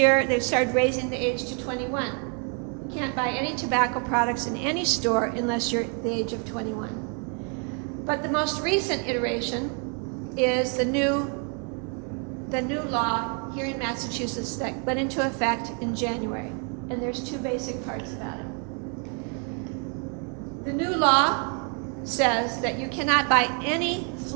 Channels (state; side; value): quieter; left; 38.9 dB